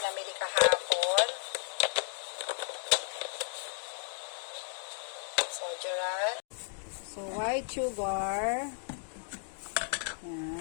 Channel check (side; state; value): right; silent; digital silence